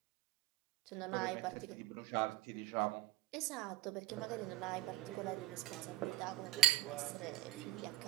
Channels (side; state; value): left; quieter; 15.5 dB